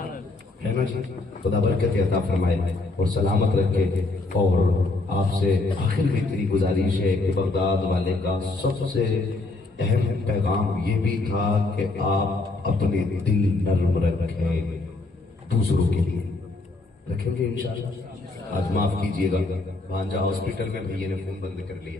है ना जी। खुदा बरकत अता फरमाए और सलामत रखे। और आपसे आखिर में इतनी गुजारिश है कि बगदाद वाले का सबसे अहम पैगाम ये भी था कि आप अपने दिल नर्म रखें, दूसरों के लिए रखेंगे इंशाअल्लाह। आज माफ कीजिएगा भांजा हॉस्पिटल में भैया ने फोन बंद कर लिए,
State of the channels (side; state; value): right; quieter; 3.2 dB